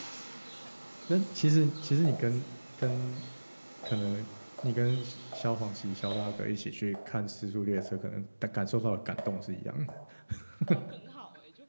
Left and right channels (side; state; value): both; inverted; correlation -1.00